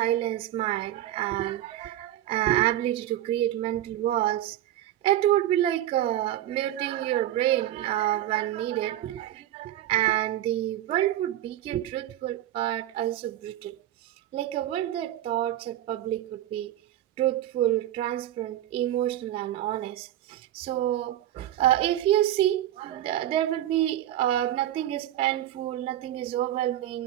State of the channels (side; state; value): left; quieter; 12.9 dB